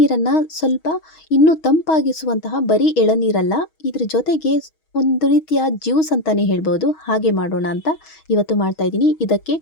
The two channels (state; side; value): late; right; 6.3 ms